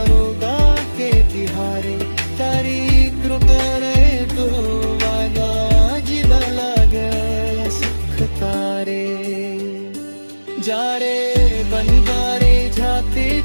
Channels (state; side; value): inverted; both; correlation -1.00